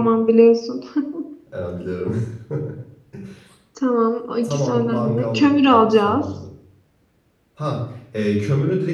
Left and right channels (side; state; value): both; identical; correlation 1.00